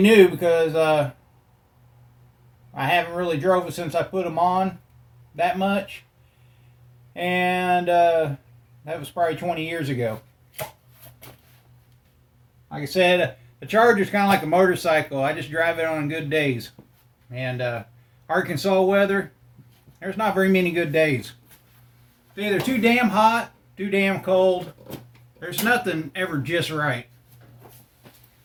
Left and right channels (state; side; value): identical; both; correlation 1.00